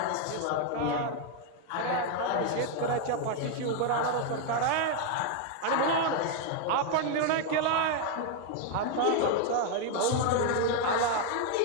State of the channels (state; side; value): different; both; correlation 0.01